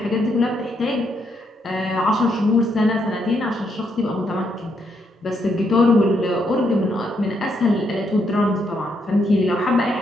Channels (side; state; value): both; normal; correlation 0.77